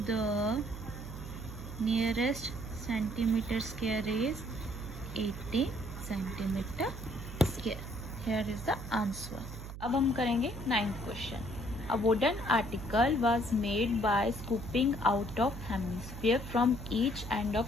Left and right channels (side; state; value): right; noise; hum, 10 dB below the sound